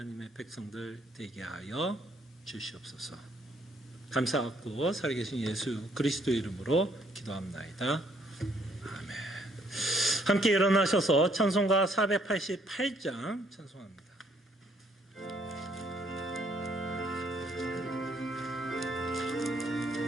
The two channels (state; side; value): normal; both; correlation 0.67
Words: 백성들 되게 하여 주시옵소서. 감사하고 살아계신 예수 그리스도의 이름으로 기도합나이다. 아멘. 함께 일어나셔서 찬송가 488장 찬송합니다.